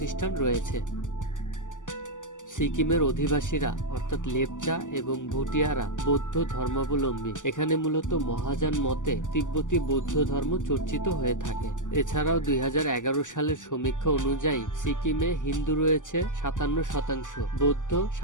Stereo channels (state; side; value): late; right; 0.87 ms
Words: রয়েছে। সিকিমের অধিবাসীরা অর্থাৎ লেপচা এবং ভুটিয়ারা বৌদ্ধ ধর্মাবলম্বী। এখানে মূলত মহাযান মতে তিব্বতী বৌদ্ধ ধর্ম চর্চিত হয়ে থাকে। এছাড়াও 2011 সালের সমীক্ষা অনুযায়ী সিকিমে হিন্দু রয়েছে 57%, বৌদ্ধ